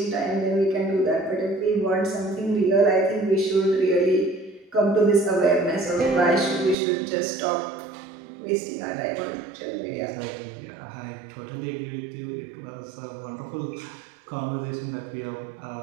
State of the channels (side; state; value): left; drops out; at 6.8 s